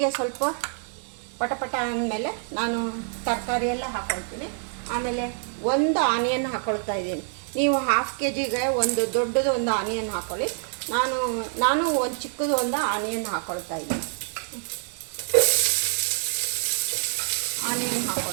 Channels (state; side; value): silent; left; 61 dB below the other